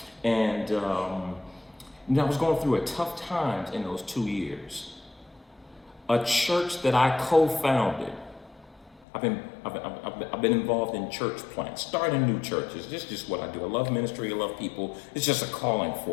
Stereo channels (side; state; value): right; drops out; at 9.1 s